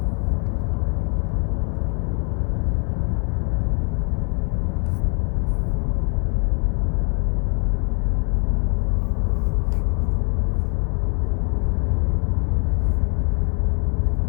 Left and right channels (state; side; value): quieter; right; 38.2 dB